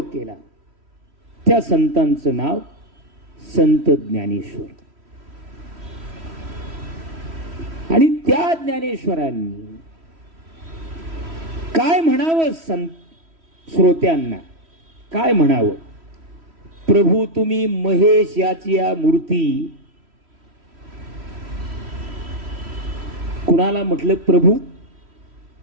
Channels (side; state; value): left; late; 3.1 ms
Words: केला त्या संतांचं नाव संत ज्ञानेश्वर. आणि त्या ज्ञानेश्वरांनी काय म्हणावं श्रोत्यांना, काय म्हणावं? प्रभू तुम्ही महेश याची या मूर्ती. कुणाला म्हटलं प्रभू?